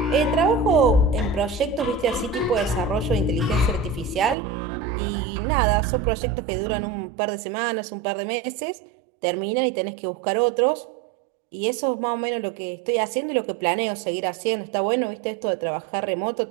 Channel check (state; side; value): drops out; left; at 4.4 s